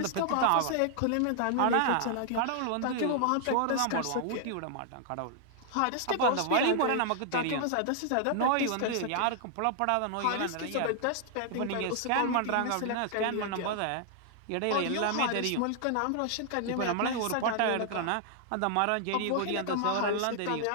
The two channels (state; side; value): different; both; correlation -0.01